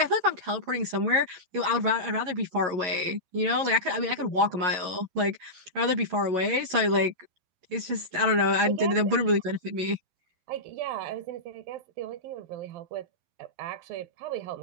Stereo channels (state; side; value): late; left; 11 ms